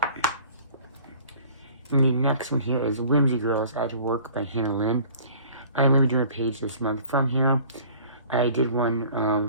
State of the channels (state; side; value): inverted; both; correlation -0.50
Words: And the next one here is Whimsy Girls at Work by Lynn. I'm going to be doing a page this month from here. I did one